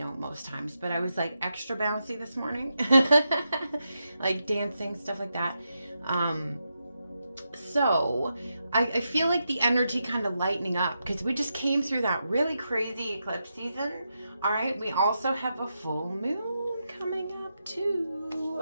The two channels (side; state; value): both; inverted; correlation -0.86